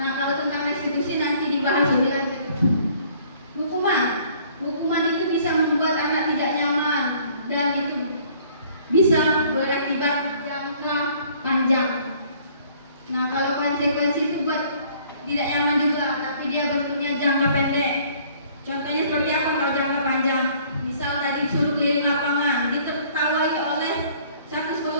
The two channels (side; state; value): both; inverted; correlation -0.57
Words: kalau tentang restitusi nanti dibahas lebih lanjut. Hukuman itu bisa membuat anak tidak nyaman dan itu bisa berakibat jangka panjang. Nah, kalau konsekuensi itu buat tidak nyaman juga, tapi dia bentuknya jangka pendek. Contohnya seperti apa kalau jangka panjang? Misal tadi disuruh keliling lapangan, ditertawai oleh satu